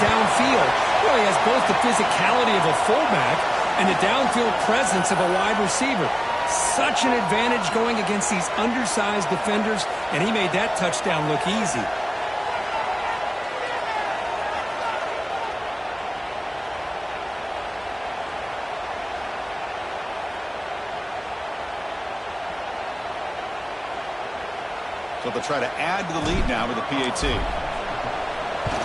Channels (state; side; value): identical; both; correlation 1.00